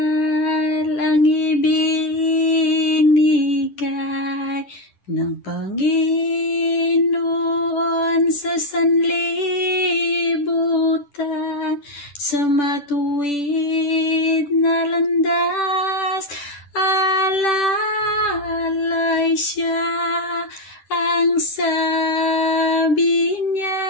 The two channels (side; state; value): right; late; 10 ms